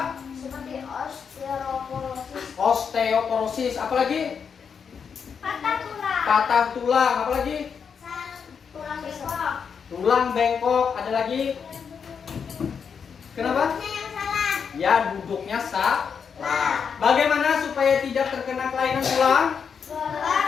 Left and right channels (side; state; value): right; quieter; 6.6 dB